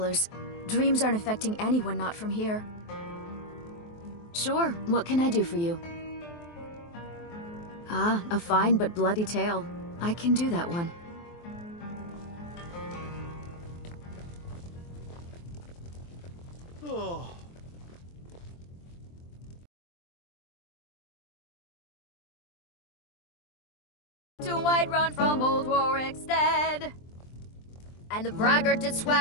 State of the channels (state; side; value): late; right; 23 ms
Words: Dreams aren't affecting anyone not from here. Sure, what can I do for you? Ah, a fine but bloody tale. I can do that one. Oh. To Whiterun from old Warwick's dead. And the braggart did